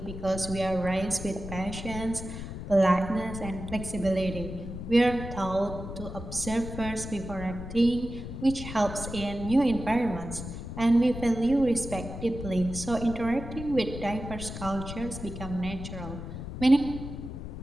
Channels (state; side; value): noise; left; rumble, 8 dB below the sound